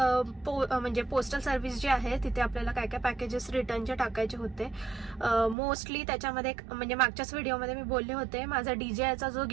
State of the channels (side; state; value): left; drops out; at 5.6 s